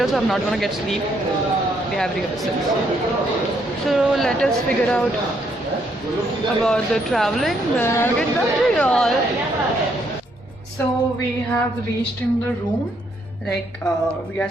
so I'm not gonna get sleep. We have rehearsals. So let us figure out about the traveling. Then I'll get back to y'all. So we have reached in the room. Like we are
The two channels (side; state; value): both; normal; correlation 0.72